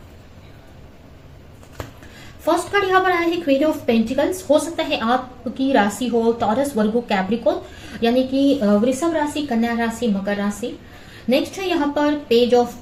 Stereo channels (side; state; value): both; identical; correlation 1.00